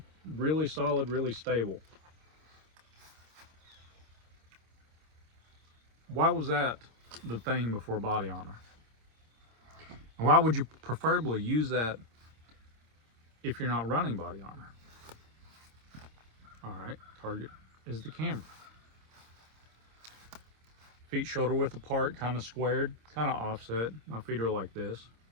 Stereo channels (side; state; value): left; late; 26 ms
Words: really solid, really stable. Why was that the thing before body armor? And why would you preferably use that if you're not running body armor? All right, target is the camera. Feet shoulder width apart, kind of squared, kind of offset. My feet are like this.